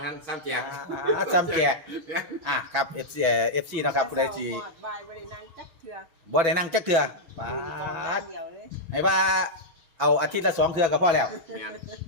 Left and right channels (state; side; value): late; left; 6.0 ms